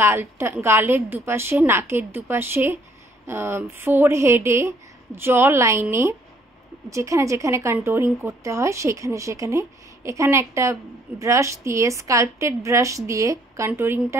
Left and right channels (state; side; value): normal; both; correlation 0.64